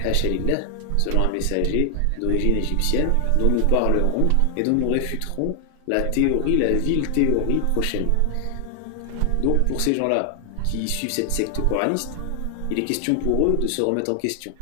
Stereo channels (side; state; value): both; different; correlation 0.00